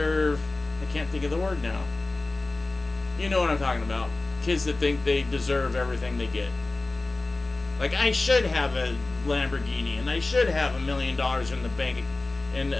I can't think of the word now. You know what I'm talking about. Kids that think they deserve everything they get. Like, I should have a Lamborghini and I should have $1 million in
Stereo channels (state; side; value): quieter; right; 3.2 dB